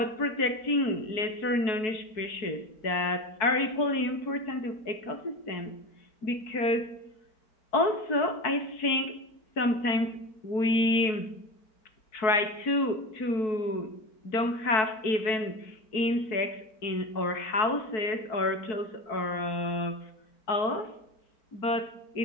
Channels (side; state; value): right; late; 4.6 ms